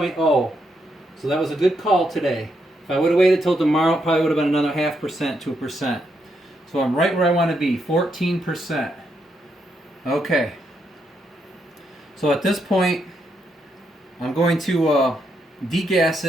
So that was a good call today. If I would have waited till tomorrow, it probably would have been another 0.5%, 2%. So I'm right where I want to be, 14%. Okay. So at this point, I'm going to degas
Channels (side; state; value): both; normal; correlation 0.79